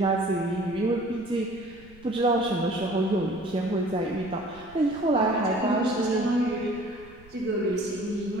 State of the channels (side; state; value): right; noise; rumble, 23 dB below the sound